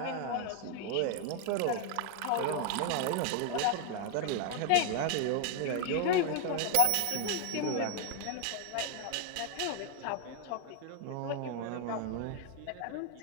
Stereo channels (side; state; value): both; different; correlation 0.00